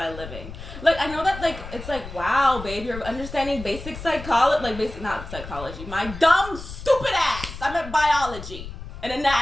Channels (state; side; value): noise; left; rumble, 12 dB below the sound